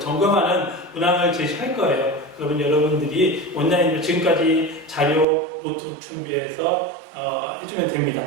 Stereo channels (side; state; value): left; drops out; at 5.2 s